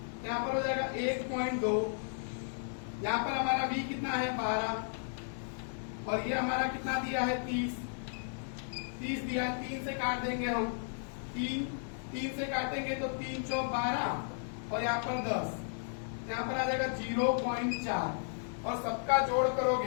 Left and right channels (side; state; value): right; silent; digital silence